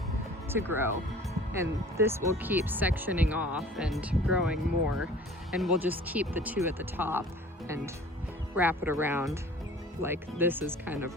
to grow, and this will keep sectioning off and growing more, and we'll just keep the two at the top and wrap it around like this is kind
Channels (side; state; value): both; normal; correlation 0.47